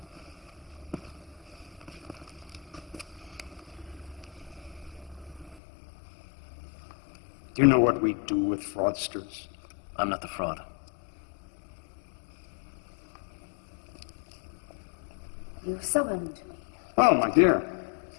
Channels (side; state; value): right; drops out; at 5.6 s